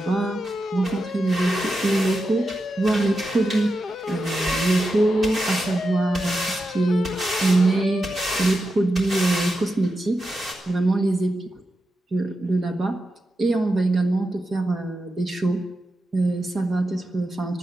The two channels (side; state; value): both; normal; correlation 0.89